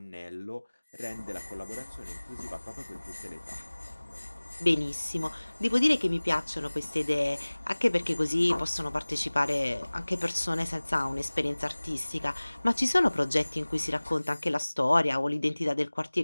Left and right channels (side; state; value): both; inverted; correlation -1.00